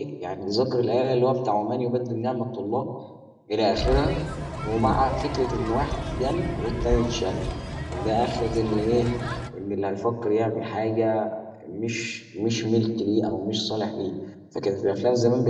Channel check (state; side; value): identical; both; correlation 1.00